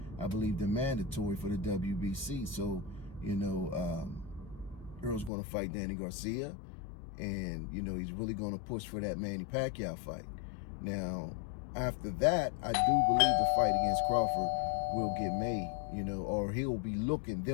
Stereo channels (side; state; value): right; drops out; at 5.3 s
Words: I believe, the mandatory for the WBC. So, you know, Errol's going to fight Danny Garcia, and, you know, he's really going to push for that Manny Pacquiao fight. Now, after that, I do believe the fight against Crawford will get made, you know, or they'll